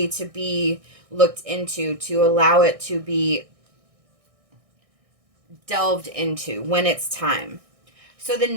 to be looked into, to allow it to be delved into when it's time. So the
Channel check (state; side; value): late; left; 1.6 ms